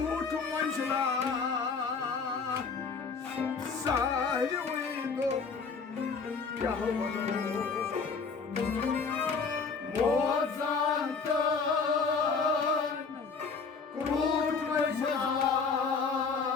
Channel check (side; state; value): right; quieter; 5.1 dB